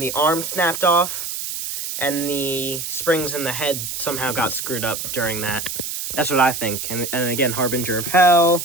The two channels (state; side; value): noise; right; hiss, 5 dB below the sound